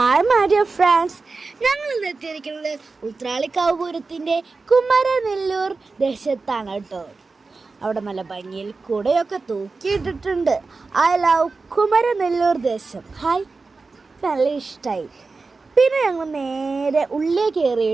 my dear friends, ഞങ്ങൾ ഇന്ന് എത്തിയിരിക്കുന്നത് ഉത്രാളിക്കാവ് പൂരത്തിൻ്റെ കുമരനെല്ലൂർ ദേശത്താണ് കേട്ടോ. അവിടെ നല്ല ഭംഗിയിൽ കുടയൊക്കെ തൂക്കിയിട്ടിട്ടുണ്ട്. ഐ ലവ് കുമരനെല്ലൂർ ദേശം. ഹായ്, നല്ല ഇഷ്ടമായി. പിന്നെ ഞങ്ങൾ നേരെ ഉള്ളിൽ കയറി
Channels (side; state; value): left; quieter; 4.0 dB